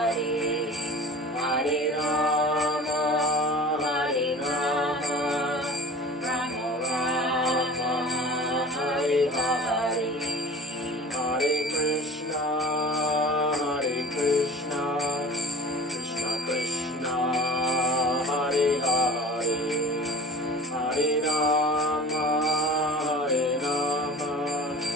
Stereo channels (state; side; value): normal; both; correlation 0.40